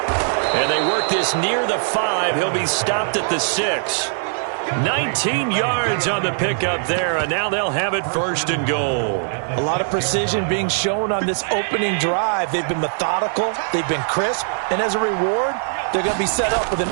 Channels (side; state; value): left; silent; digital silence